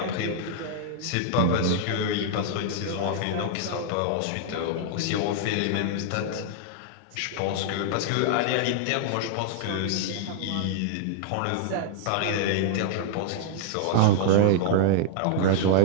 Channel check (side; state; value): both; different; correlation -0.01